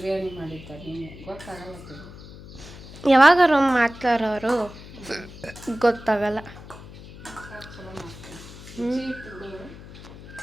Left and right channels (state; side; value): noise; left; hum, 16 dB below the sound